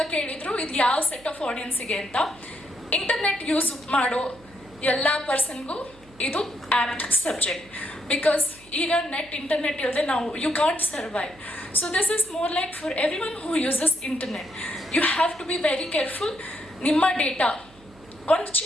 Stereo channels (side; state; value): right; noise; hum, 25 dB below the sound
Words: ಕೇಳಿದ್ರು ಇದು ಯಾವ ಸೆಟ್ ಆಫ್ ಆಡಿಯನ್ಸಿಗೆ ಅಂತ. ಇಂಟರ್ನೆಟ್ ಯೂಸ್ ಮಾಡೋ ಎಲ್ಲ ಪರ್ಸನ್ಗೂ ಇದು apt subject. Because ಈಗ ಇಂಟರ್ನೆಟ್ ಇಲ್ಲದೆ ನಾವು you can't survive. So this is more like for everyone who uses internet. You have to be very careful. ನಿಮ್ಮ ಡೇಟಾ ಒಂದು